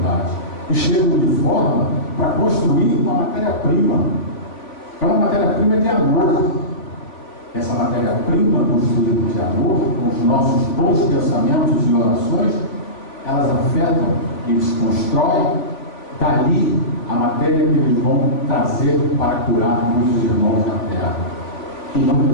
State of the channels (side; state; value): right; late; 3.5 ms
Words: E chegam de forma para construir uma matéria-prima. É uma matéria-prima de amor. Essa matéria-prima construída de amor, com os nossos bons pensamentos e orações, elas afetam, eles constroem, dali a matéria que eles vão trazer para curar muitos irmãos na terra.